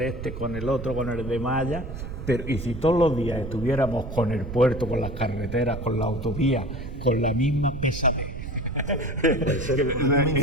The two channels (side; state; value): right; noise; rumble, 8 dB below the sound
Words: con el otro, con el de Maya, pero y si todos los días estuviéramos con el puerto, con las carreteras, con la autovía, con la misma pesadez,